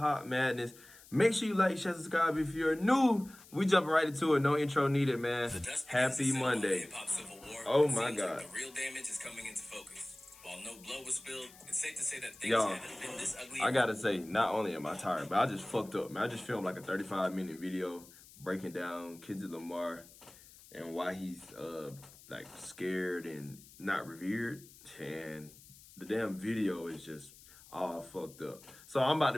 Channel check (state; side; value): noise; left; hiss, 22 dB below the sound